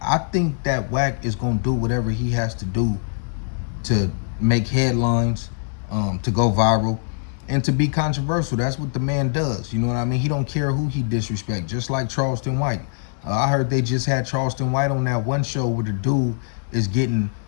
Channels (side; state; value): right; silent; digital silence